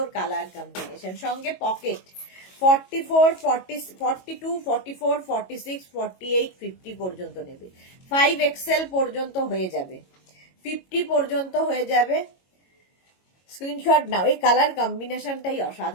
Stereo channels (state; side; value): late; right; 22 ms